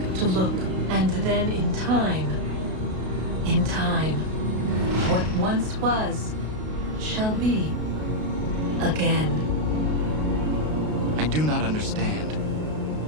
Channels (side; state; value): left; late; 32 ms